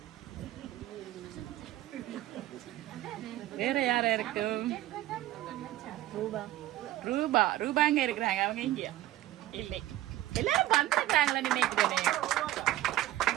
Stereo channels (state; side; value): quieter; left; 14.9 dB